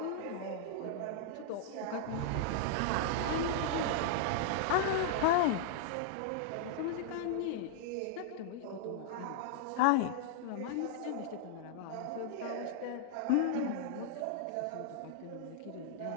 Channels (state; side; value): different; both; correlation -0.01